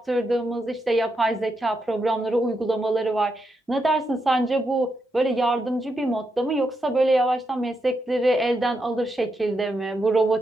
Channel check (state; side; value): normal; both; correlation 0.83